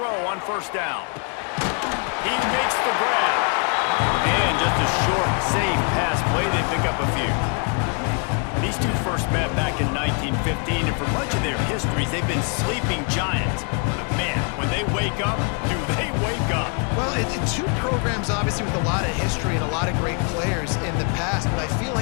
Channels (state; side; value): quieter; right; 38.6 dB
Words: on first down. He makes the grab. And just a short, safe pass play. They pick up a few. These two first met back in 1915, and for much of their histories, they've been sleeping giants. But man, when they wake up, do they wake up? Well, two programs, obviously, with a lot of history and a lot of great players in the past, but I feel